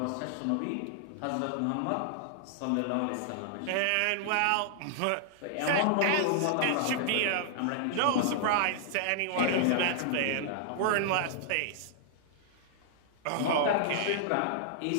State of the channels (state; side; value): different; both; correlation -0.01